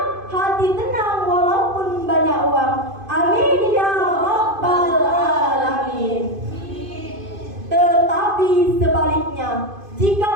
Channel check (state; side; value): late; left; 2.5 ms